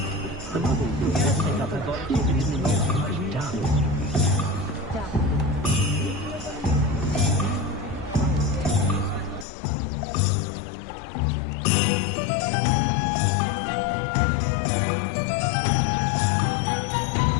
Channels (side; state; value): right; drops out; at 9.5 s